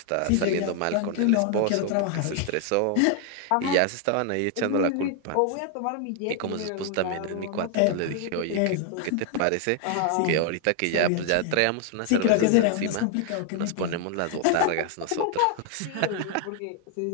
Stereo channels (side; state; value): both; different; correlation 0.00